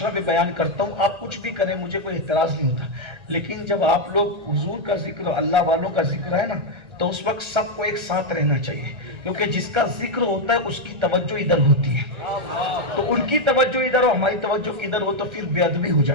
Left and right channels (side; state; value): left; late; 1.3 ms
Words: پہ بیان کرتا ہوں آپ کچھ بھی کریں مجھے کوئی اعتراض نہیں ہوتا، لیکن جب آپ لوگ حضور کا ذکر، اللہ والوں کا ذکر ہے نا، تو اس وقت سب کو ایک ساتھ رہنا چاہیے، کیونکہ جس کا ذکر ہوتا ہے اس کی توجہ ادھر ہوتی ہے، تو ان کی توجہ ادھر ہو، ہماری توجہ ادھر ہو تو پھر بے ادبی ہو